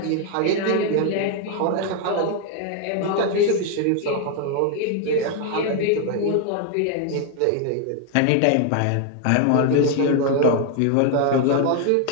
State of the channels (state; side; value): different; both; correlation 0.00